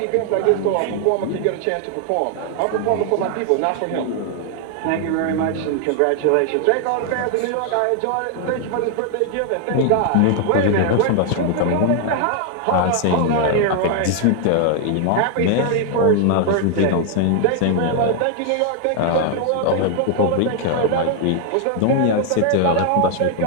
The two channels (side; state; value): both; different; correlation 0.00